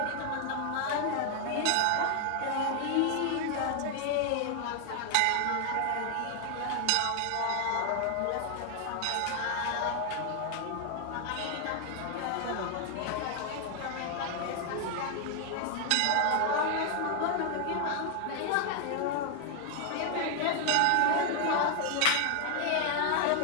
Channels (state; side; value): different; both; correlation 0.00